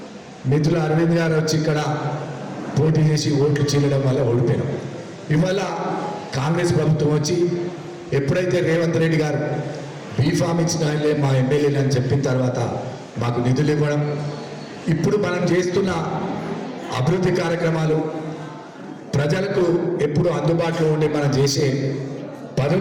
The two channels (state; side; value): identical; both; correlation 1.00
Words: మిత్రులు అరవింద్ గారు వచ్చి ఇక్కడ పోటీ చేసి ఓట్లు చీలడం వల్ల ఓడిపోయినాం. ఇవాళ కాంగ్రెస్ ప్రభుత్వం వచ్చి ఎప్పుడైతే రేవంత్ రెడ్డి గారు బీఫామ్ ఇచ్చిన ఆయనలే మా ఎమ్మెల్యేలు అని చెప్పిన తర్వాత మాకు నిధులు ఇవ్వడం, ఇప్పుడు మనం చేస్తున్న అభివృద్ధి కార్యక్రమాలు ప్రజలకు ఎప్పుడు అందుబాటులో ఉండి మనం చేసే